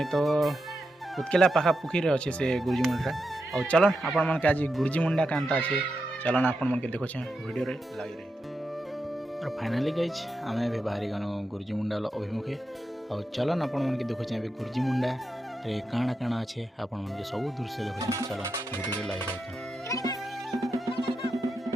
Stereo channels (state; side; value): normal; both; correlation 0.87